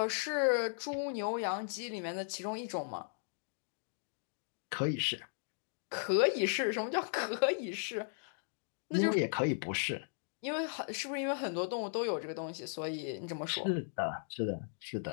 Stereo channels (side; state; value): right; silent; digital silence